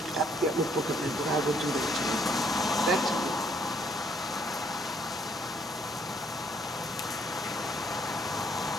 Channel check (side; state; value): both; normal; correlation 0.68